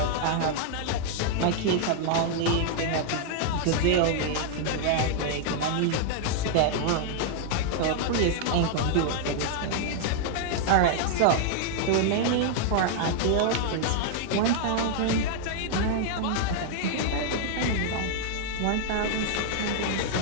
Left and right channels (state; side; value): different; both; correlation -0.01